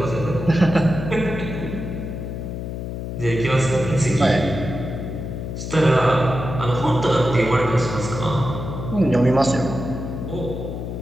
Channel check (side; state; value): left; noise; hum, 6 dB below the sound